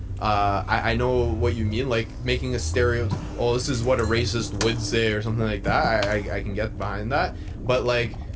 I know what you mean, like making a stereotype. Oh, this is what a racist would say, or something like that. I can get behind that. But like,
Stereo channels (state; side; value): identical; both; correlation 1.00